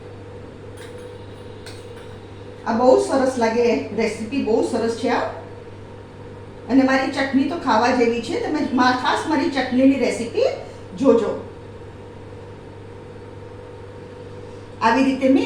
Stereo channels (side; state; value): both; identical; correlation 1.00